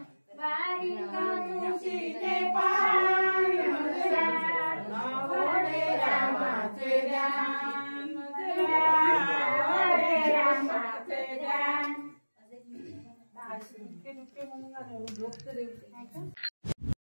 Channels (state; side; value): inverted; both; correlation -1.00